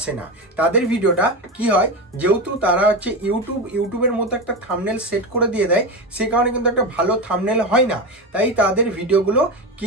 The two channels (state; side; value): normal; both; correlation 0.18